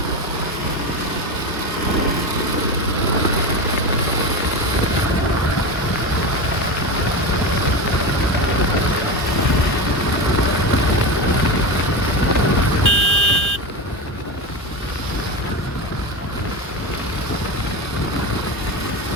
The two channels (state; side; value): normal; both; correlation 0.20